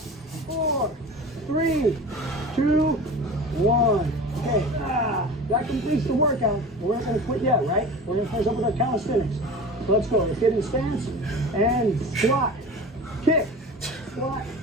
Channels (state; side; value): normal; both; correlation 0.35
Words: 3, 2, 1. Okay. That completes the workout. We're not going to quit yet, right? We're going to finish up with our calisthenics. So let's go. Let's get in stance and squat, kick, squat,